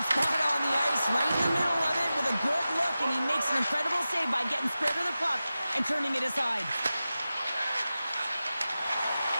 spot on the ice, right in the middle of it with a good look, and he makes an incredible save by getting spread of the puck and turning it aside.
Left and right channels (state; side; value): inverted; both; correlation -0.94